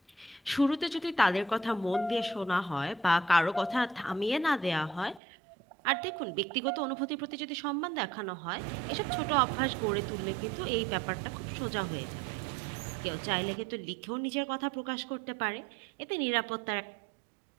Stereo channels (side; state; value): left; drops out; at 5.2 s